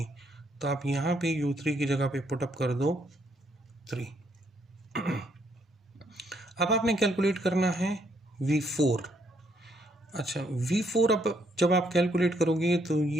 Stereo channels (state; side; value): normal; both; correlation 0.71